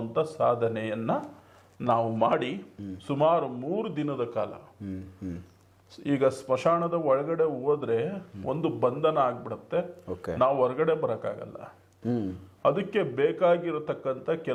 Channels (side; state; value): both; identical; correlation 1.00